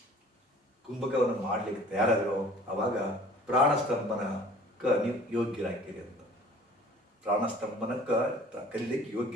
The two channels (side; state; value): both; normal; correlation 0.49